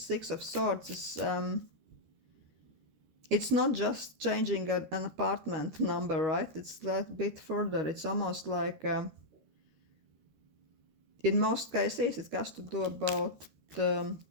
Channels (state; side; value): late; left; 13 ms